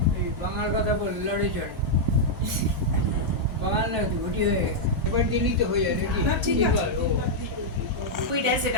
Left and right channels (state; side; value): normal; both; correlation -0.05